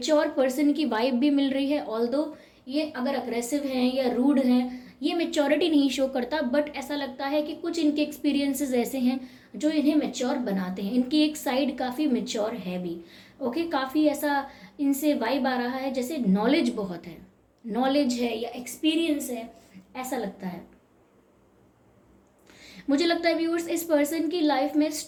पर्सन की वाइब भी मिल रही है। ऑल्दो ये अगर अग्रेसिव हैं या रूड हैं, ये मेच्योरिटी नहीं शो करता, बट ऐसा लगता है कि कुछ इनके एक्सपीरियंसेस ऐसे हैं जो इन्हें मेच्योर बनाते हैं। इनकी एक साइड काफ़ी मेच्योर है भी। ओके, काफ़ी ऐसा इनसे वाइब आ रहा है जैसे नॉलेज बहुत है, नॉलेज है या एक्सपीरियंस है, ऐसा लगता है। मुझे लगता है व्यूअर्स, इस पर्सन की लाइफ में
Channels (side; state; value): both; identical; correlation 1.00